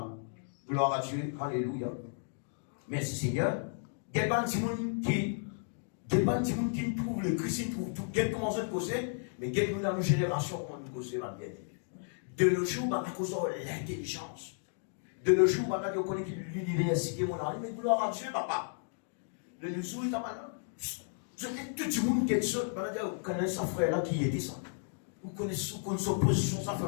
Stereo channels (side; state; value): right; silent; digital silence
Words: Gloire à Dieu. Alléluia. Merci Seigneur. Il y a des gens qui trouvent le Christ, qui trouvent tout. Il y a comment se poser, mais il y a dans nos générations, on nous pose bien. De nos jours, on a causé l'intelligence. De nos jours, on a connu l'université, mon ami, mais gloire à Dieu, papa. De nos jours, il y a maintenant. Tout le monde qui est seul, vous connaissez sa frère là qui était ça. Vous connaissez son position, sa